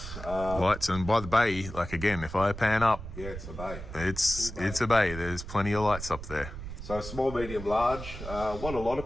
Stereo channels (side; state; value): right; noise; rumble, 10 dB below the sound